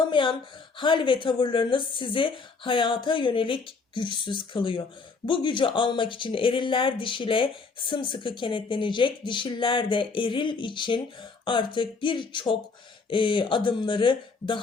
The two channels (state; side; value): quieter; right; 4.5 dB